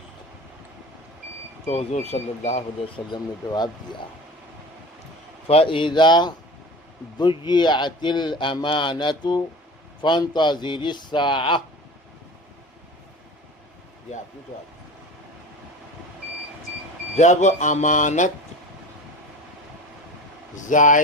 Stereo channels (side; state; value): both; normal; correlation 0.35